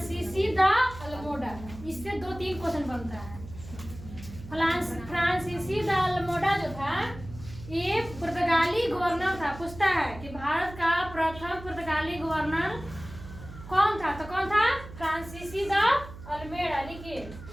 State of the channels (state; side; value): noise; right; hum, 14 dB below the sound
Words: द अल्मोडा। इससे 2-3 क्वेश्चन बनता है। फ्रांसीसी द अल्मोडा जो था ये पुर्तगाली गवर्नर था। पूछता है कि भारत का प्रथम पुर्तगाली गवर्नर कौन था? तो कौन था? फ्रांसीसी द अल्मेडा। लिखिए,